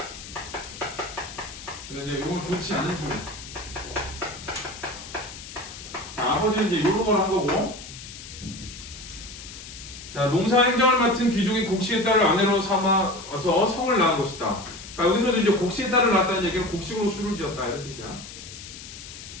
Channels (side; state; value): left; noise; hiss, 13 dB below the sound